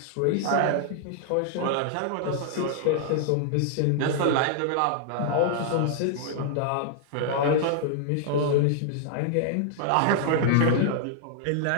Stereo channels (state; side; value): different; both; correlation -0.01